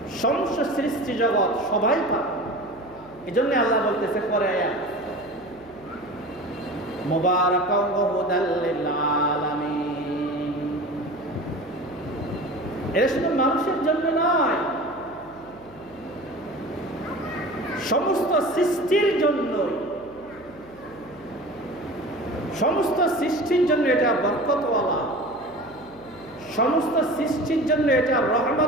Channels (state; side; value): noise; left; hum, 23 dB below the sound